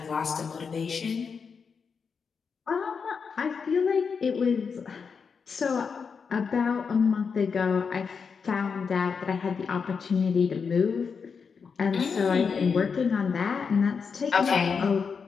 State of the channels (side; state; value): right; quieter; 5.8 dB